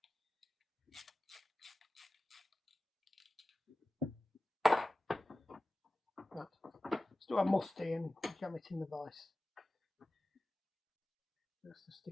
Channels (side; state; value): both; normal; correlation 0.96